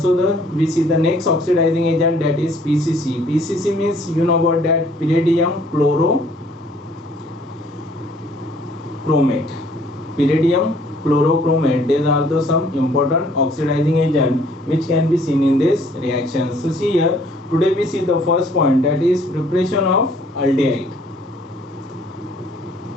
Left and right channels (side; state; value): both; normal; correlation 0.59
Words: we see the next oxidizing agent, that is PCC. PCC means, you know about that, pyridium chlorochromate. These are the some important oxidizing agent which can be seen in this reaction. So see here, today we see the first point, that is preparation of aldehyde.